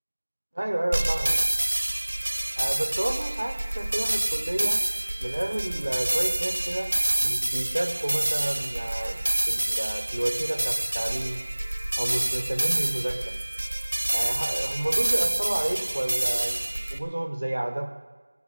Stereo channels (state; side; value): inverted; both; correlation -1.00